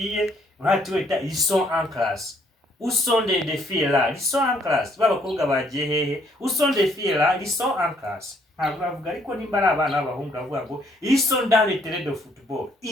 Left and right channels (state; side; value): normal; both; correlation 0.67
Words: ils sont en classe. Où sont des filles là? Ils sont en classe. Babakobwa bagiye hehe? Où sont des filles là? Ils sont en classe. Ntabwo bavuga ariko nimba ari abana b'abahungu bavuga ngo ils sont dans le terrain de football.